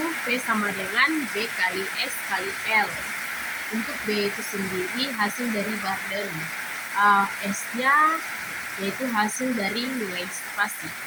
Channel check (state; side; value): identical; both; correlation 1.00